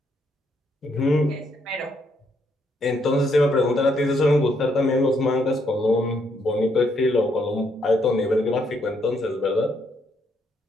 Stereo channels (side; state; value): both; normal; correlation 0.74